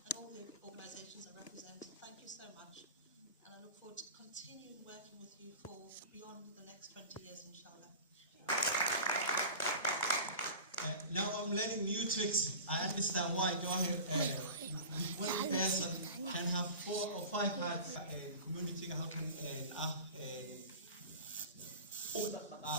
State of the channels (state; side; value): inverted; both; correlation -0.36